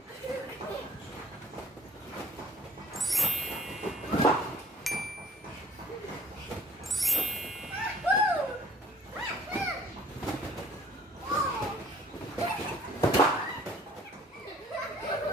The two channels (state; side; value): normal; both; correlation 0.55